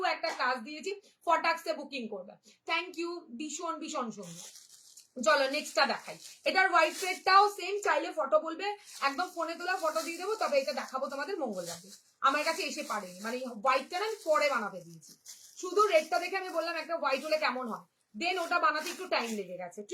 একটা কাজ দিয়েছি, ফটাক্সে বুকিং করবে। থ্যাংক ইউ, ভীষণ ভীষণ সুন্দর। চলো নেক্সটটা দেখাই। এটার হোয়াইট থ্রেডটাও সেম, চাইলে ফটো বলবে, একদম ফোনে তোলা ফটো দিয়ে দেবো, তবে এটা দেখাবো তোমাদের মঙ্গলবারে। আমার কাছে এসে পারেনি, মানে হোয়াইটটা না আমি পরে বানাতে দিয়েছি, শুধু রেডটা দেখে আমি বললাম একটা হোয়াইট হলে কেমন হয়, দেন ওটা বানাতে একটু টাইম লেগে গেছে,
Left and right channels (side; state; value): both; identical; correlation 1.00